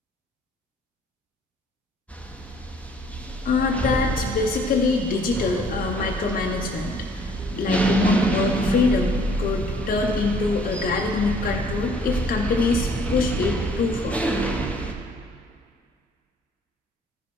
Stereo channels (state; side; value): normal; both; correlation 0.59